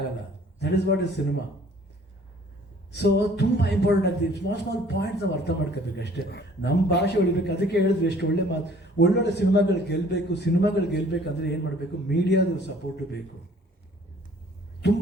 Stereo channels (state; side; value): normal; both; correlation 0.55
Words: That is what is cinema. So ತುಂಬ ಇಂಪಾರ್ಟೆಂಟ್ ಆಗ್ತದೆ. ಸ್ಮಾಲ್ ಪಾಯಿಂಟ್ಸ್ ನಾವು ಅರ್ಥ ಮಾಡ್ಕೋಬೇಕು ಅಷ್ಟೇ. ನಮ್ಮ ಭಾಷೆ ಉಳಿಬೇಕು. ಅದಕ್ಕೆ ಹೇಳಿದ್ರು ಎಷ್ಟು ಒಳ್ಳೆ ಮಾತು, ಒಳ್ಳೊಳ್ಳೆ ಸಿನಿಮಾಗಳು ಗೆಲ್ಲಬೇಕಂದ್ರೆ ಏನು ಮಾಡಬೇಕು? ಮೀಡಿಯಾದ ಸಪೋರ್ಟು ಬೇಕು.